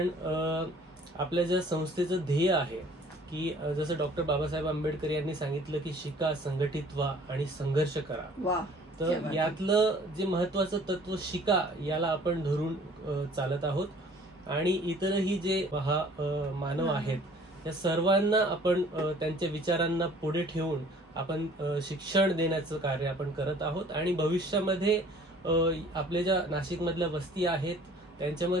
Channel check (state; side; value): normal; both; correlation 0.53